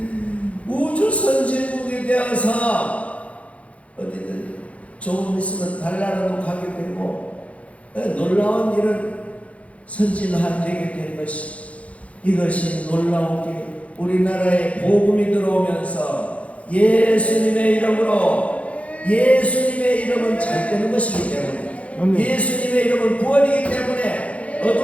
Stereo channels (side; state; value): right; late; 0.064 ms